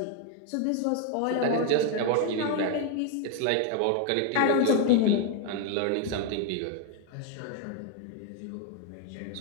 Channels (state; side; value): different; both; correlation 0.01